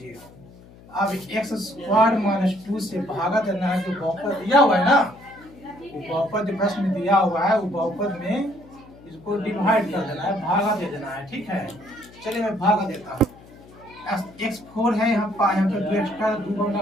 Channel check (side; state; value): left; noise; hum, 22 dB below the sound